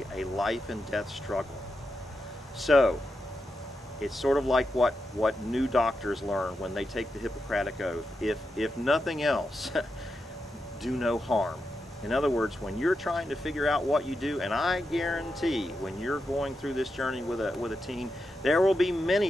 a life and death struggle. So, it's sort of like what new doctors learn when they take the Hippocratic Oath. If nothing else, do no harm. In other words, when you're trying to figure out what you do, and I guarantee when you're going through this journey with a teen, there will be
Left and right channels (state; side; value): normal; both; correlation 0.87